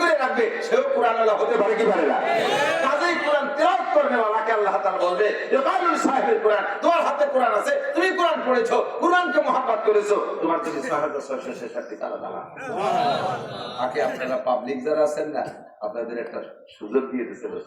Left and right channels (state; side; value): identical; both; correlation 1.00